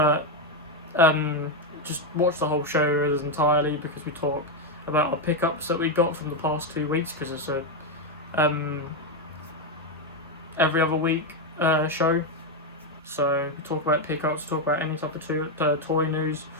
just watch the whole show entirely, because we talk about our pickups that we got from the past 2 weeks, because it's a every other week show. So we talk about pickups, talk about any type of toy news,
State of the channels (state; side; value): normal; both; correlation 0.05